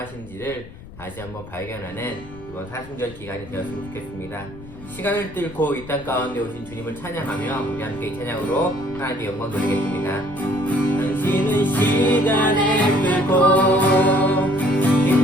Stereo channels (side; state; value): left; noise; rumble, 17 dB below the sound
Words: 다시 한번 발견하는 이번 사순절 기간이 되었으면 좋겠습니다. 시간을 뚫고 이 땅 가운데 오신 주님을 찬양하며 우리 함께 이 찬양으로 하나님께 영광 돌리겠습니다. 당신은 시간을 뚫고